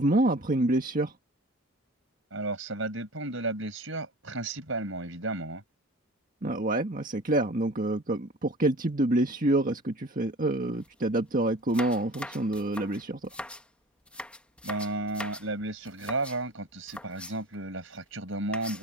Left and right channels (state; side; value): normal; both; correlation 0.40